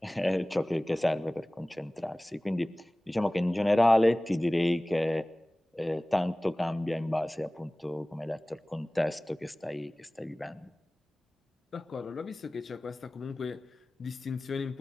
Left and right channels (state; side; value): normal; both; correlation 0.98